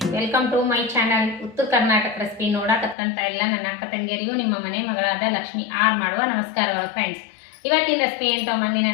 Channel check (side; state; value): right; drops out; at 3.0 s